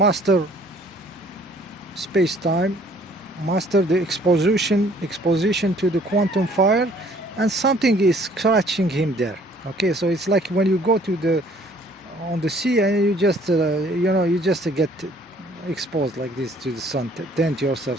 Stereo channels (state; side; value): normal; both; correlation 0.58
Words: space-time, master the exposition to the quantum fire, and something is scratching him there. Okay, so it's like when you go on the sea and you just you just get exposed like this to the sun, tend